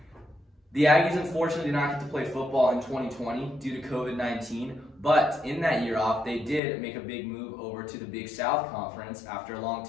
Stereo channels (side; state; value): right; drops out; at 6.6 s